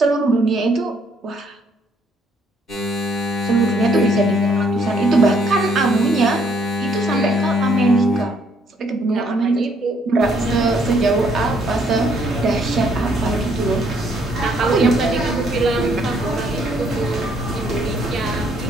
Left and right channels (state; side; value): normal; both; correlation 0.67